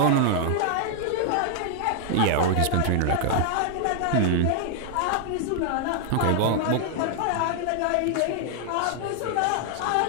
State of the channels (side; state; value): both; different; correlation 0.00